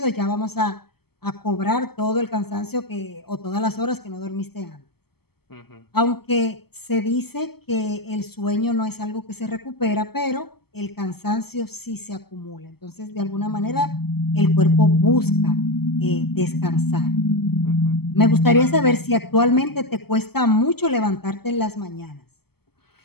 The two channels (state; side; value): late; right; 0.96 ms